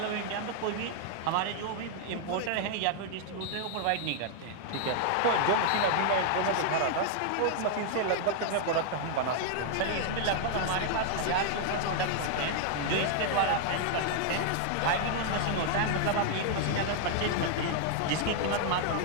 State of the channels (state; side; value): different; both; correlation 0.00